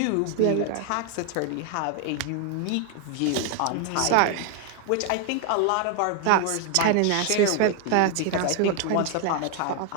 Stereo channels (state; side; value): different; both; correlation 0.00